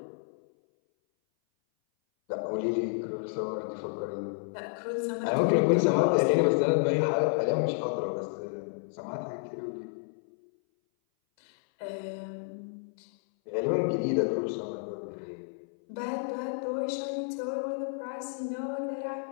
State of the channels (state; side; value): silent; right; 57 dB below the other